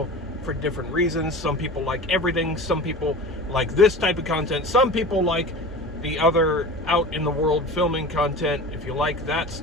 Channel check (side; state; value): both; normal; correlation 0.34